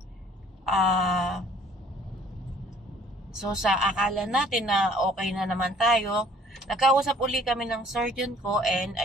So, sa akala natin na okay na naman tayo, nagkausap uli kami ng surgeon ko, and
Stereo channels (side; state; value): both; normal; correlation 0.56